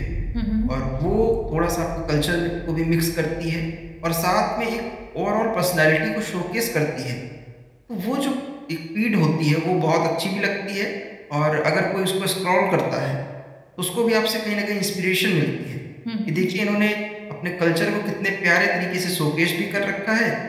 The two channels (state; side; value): identical; both; correlation 1.00